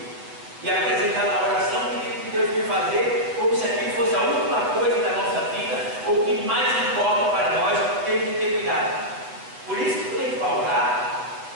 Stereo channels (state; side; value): late; left; 8.3 ms